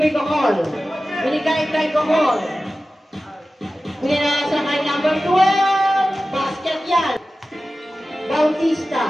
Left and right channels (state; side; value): normal; both; correlation 0.95